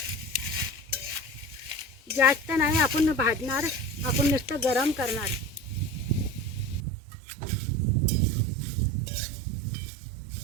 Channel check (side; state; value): left; drops out; at 6.8 s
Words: जास्त नाही आपण भाजणार, आपण नुसतं गरम करणार.